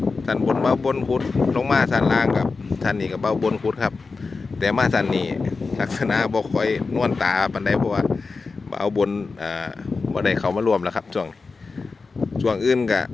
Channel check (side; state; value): right; quieter; 4.3 dB